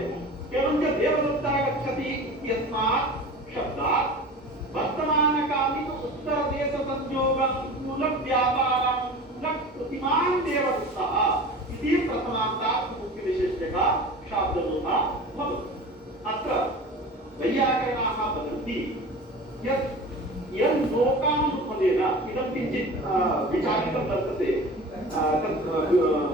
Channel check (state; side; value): normal; both; correlation 0.36